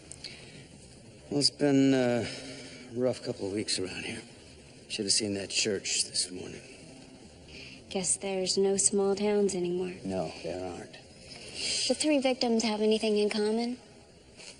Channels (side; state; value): both; identical; correlation 1.00